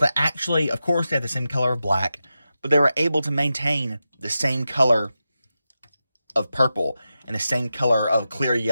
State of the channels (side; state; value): both; inverted; correlation -0.91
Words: actually, of course, they had the same color of black, but they were able to maintain the same color of purple and the same color of clear